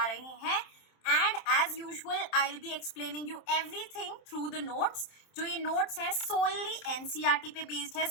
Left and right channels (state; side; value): late; right; 27 ms